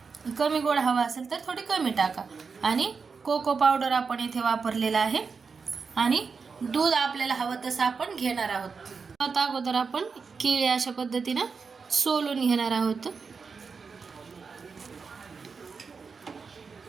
कमी गोड हवा असेल तर थोडी कमी टाका, आणि कोको पावडर आपण इथे वापरलेला आहे, आणि दूध आपल्याला हवं तसं आपण घेणार आहोत। आता अगोदर आपण केळी अशा पद्धतीने सोलून घेणार आहोत,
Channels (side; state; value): left; quieter; 5.2 dB